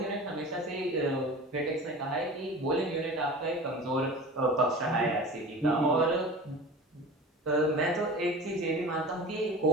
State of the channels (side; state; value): both; normal; correlation 0.37